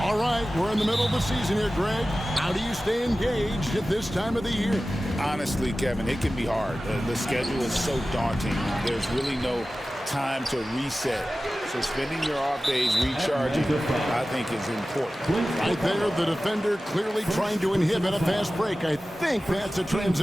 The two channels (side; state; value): both; normal; correlation 0.95